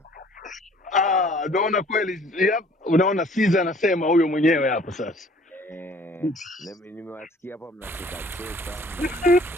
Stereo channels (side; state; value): both; normal; correlation 0.55